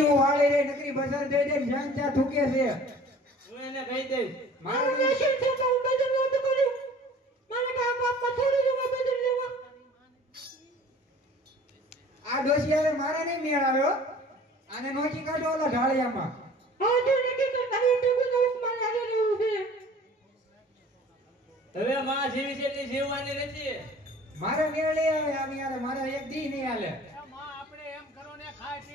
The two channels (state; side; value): normal; both; correlation 0.47